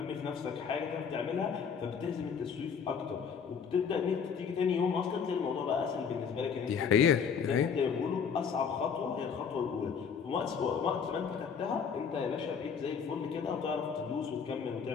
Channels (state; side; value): quieter; right; 6.6 dB